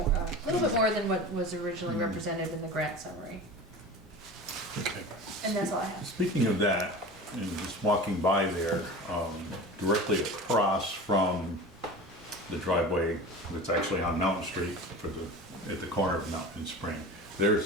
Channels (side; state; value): both; normal; correlation 0.34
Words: a little bit more than what was originally represented in the grant summary. Okay. And that's all I have. Speaking of that, and just walking by there, directly across from the driveway that's actually on Mountain Street at the corner of Mountain and Spring,